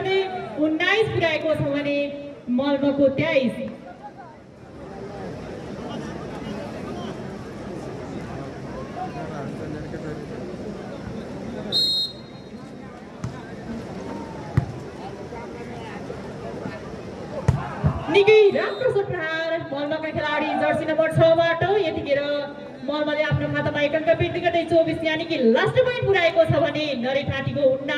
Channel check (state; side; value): identical; both; correlation 1.00